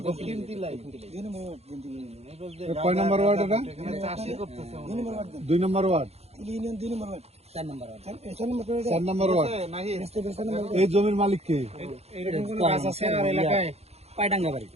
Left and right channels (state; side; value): late; left; 0.30 ms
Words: তিলাই। কয় নম্বর ওয়ার্ড এটা? এখানে চাষই করতেছে 2 নম্বর ওয়ার্ড। 4 নম্বর ওয়ার্ড। এই জমির মালিক কে? এরকম কোন গাছ আছে আর এলাকায়? পাইডাঙ্গা বাড়ি।